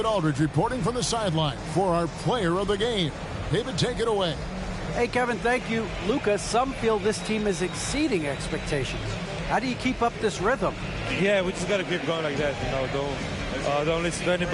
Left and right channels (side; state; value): both; identical; correlation 1.00